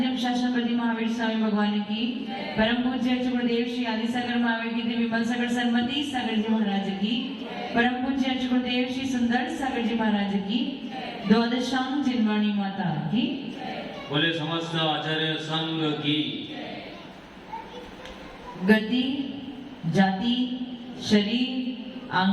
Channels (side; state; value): both; identical; correlation 1.00